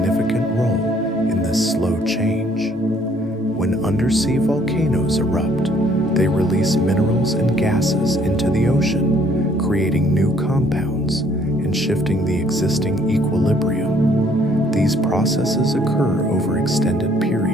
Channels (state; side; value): normal; both; correlation 0.62